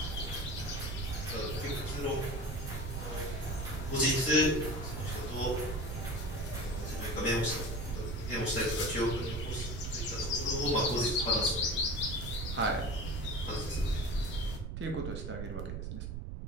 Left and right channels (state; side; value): noise; right; rumble, 5 dB below the sound